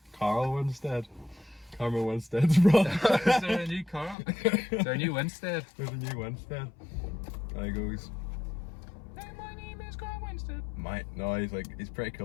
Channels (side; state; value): right; drops out; at 4.2 s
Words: Carl Winstead? Carmen Winstead's brother. Is there a new Carl? Is there a new Winstead? There's a new Winstead. And he goes, Hey, my name is Carl Winstead. no, he's pretty